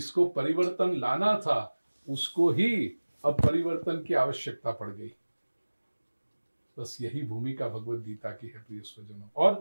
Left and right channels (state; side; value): inverted; both; correlation -1.00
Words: परिवर्तन लाना था उसको ही अब परिवर्तन की आवश्यकता पड़ गई। बस यही भूमिका भगवत गीता की है प्रिय स्वजनों।